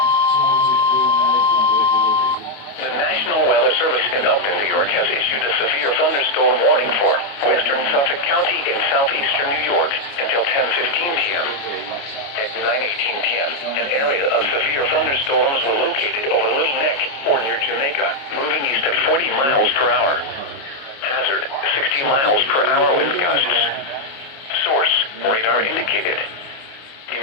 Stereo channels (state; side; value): late; right; 29 ms